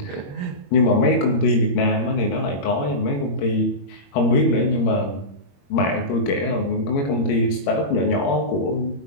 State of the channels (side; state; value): right; late; 21 ms